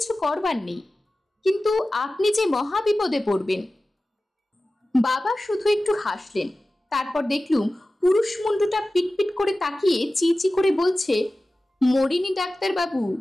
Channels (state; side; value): normal; both; correlation 0.96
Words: করবার নেই। কিন্তু আপনি যে মহা বিপদে পড়বেন। বাবা শুধু একটু হাসলেন। তারপর দেখলুম পুরুষ মুন্ডুটা পিটপিট করে তাকিয়ে চিচি করে বলছে, মরিনি ডাক্তার বাবু।